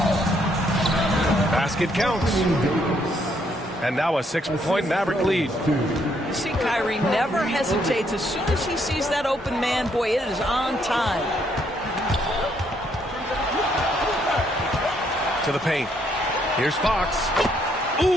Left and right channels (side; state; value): both; normal; correlation 0.71